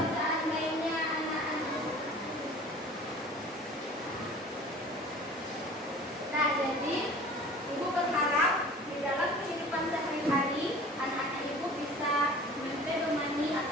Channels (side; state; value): both; normal; correlation 0.44